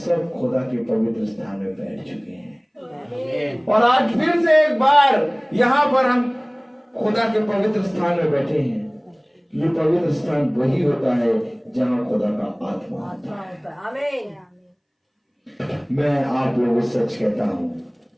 खुदा के पवित्र स्थान में बैठ चुके हैं। और आज फिर से एक बार यहाँ पर हम खुदा के पवित्र स्थान में बैठे हैं। ये पवित्र स्थान वही होता है जहाँ खुदा का आत्मा होता है। आमीन। मैं आप लोगों से सच कहता हूँ,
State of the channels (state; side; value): identical; both; correlation 1.00